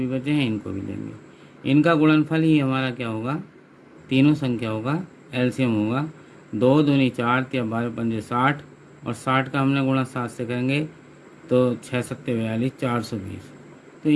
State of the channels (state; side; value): identical; both; correlation 1.00